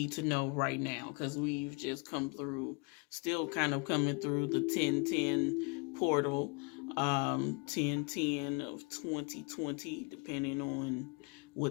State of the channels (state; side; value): quieter; right; 31.7 dB